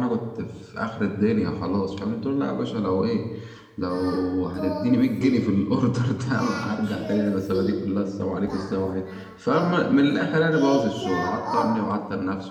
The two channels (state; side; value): identical; both; correlation 1.00